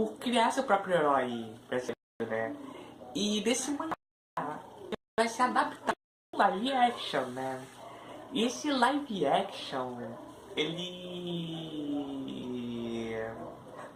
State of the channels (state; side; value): identical; both; correlation 1.00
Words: criar seu próprio herói brasileiro, né? E desse mangá vai se adaptar em live action, né? E esse live action, ele